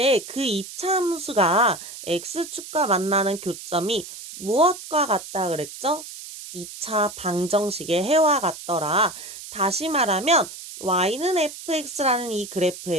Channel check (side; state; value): right; noise; hiss, 12 dB below the sound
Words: 그 2차 함수가 x축과 만나는 교점이 무엇과 같다 그랬죠? 2차 방정식의 해와 같더라. 다시 말하면 y는 fx라는 이